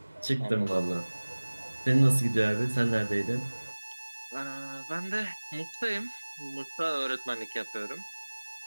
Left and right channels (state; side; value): inverted; both; correlation -1.00